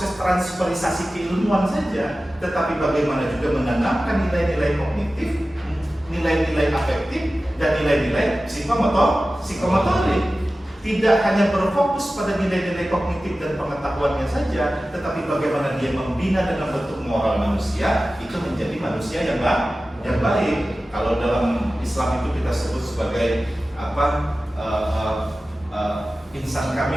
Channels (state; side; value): normal; both; correlation 0.95